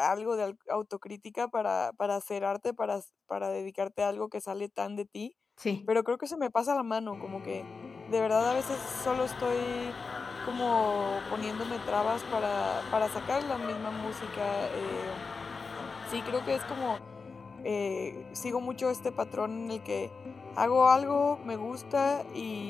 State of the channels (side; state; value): right; quieter; 4.7 dB